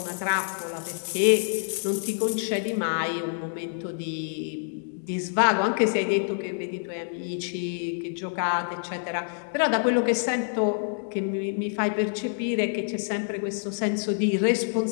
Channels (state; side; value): silent; right; digital silence